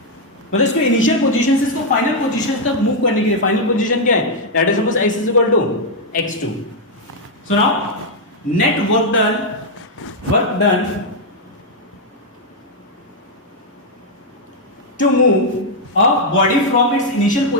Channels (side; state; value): both; normal; correlation -0.01